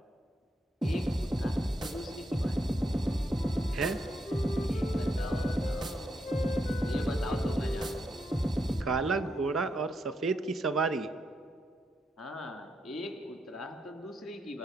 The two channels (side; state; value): both; normal; correlation 0.82